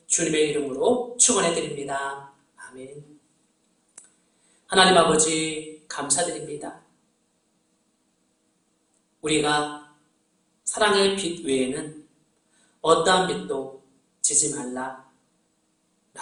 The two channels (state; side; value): identical; both; correlation 1.00